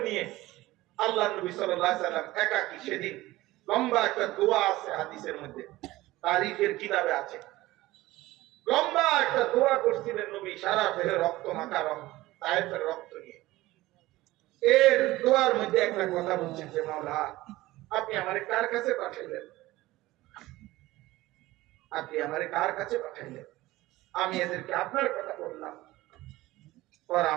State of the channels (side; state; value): left; quieter; 18.0 dB